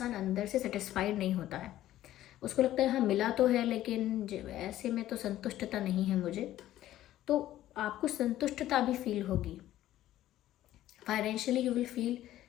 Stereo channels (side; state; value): right; quieter; 13.6 dB